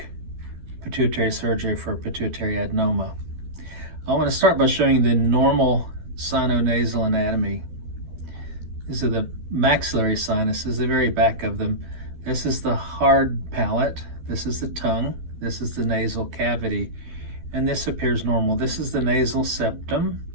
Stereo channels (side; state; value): left; late; 12 ms